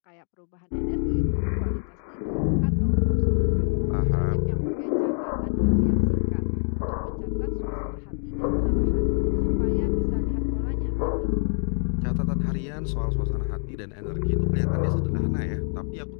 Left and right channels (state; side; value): silent; right; digital silence